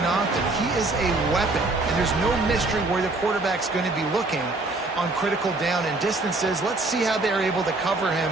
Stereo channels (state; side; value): quieter; left; 3.1 dB